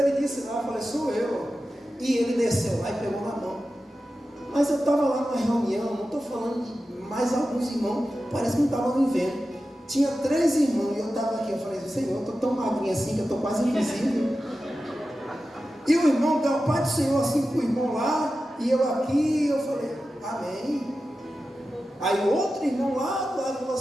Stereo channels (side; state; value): both; normal; correlation 0.93